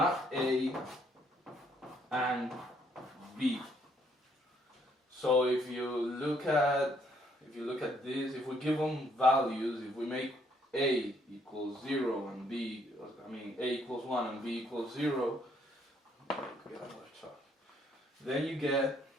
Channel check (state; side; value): normal; both; correlation 0.68